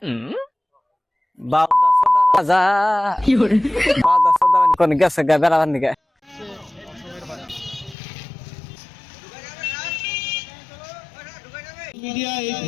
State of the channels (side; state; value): right; drops out; at 8.0 s